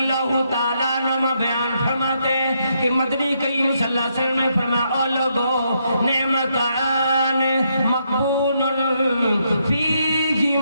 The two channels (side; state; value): both; inverted; correlation -0.77